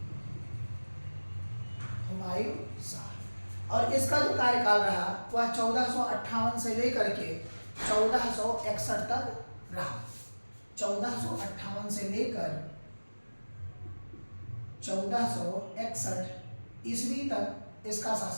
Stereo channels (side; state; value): both; inverted; correlation -1.00